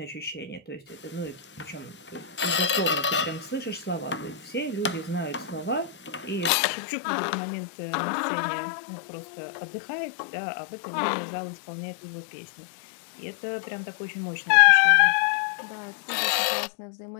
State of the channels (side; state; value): right; drops out; at 6.5 s